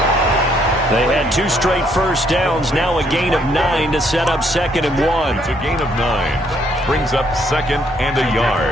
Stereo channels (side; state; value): both; normal; correlation 0.69